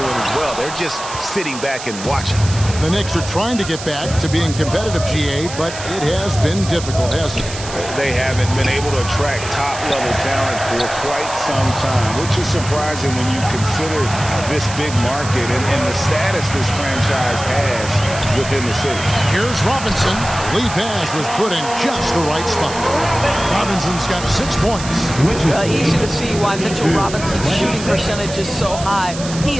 as well. They're just sitting back and watching. The Knicks are trying to get back to being competitive, GA, but it has been difficult, hasn't it? They haven't been able to attract top-level talent for quite some time, which is surprising when you consider this big market and the status this franchise has within the city. Here's Robinson. Lead pass was put in just the right spot. Robinson's got 6 points. Easy to see why Mitchell Robinson's shooting percentage is so high.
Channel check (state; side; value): noise; right; hiss, 11 dB below the sound